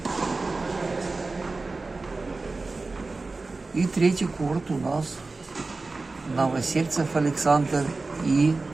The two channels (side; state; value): left; quieter; 3.6 dB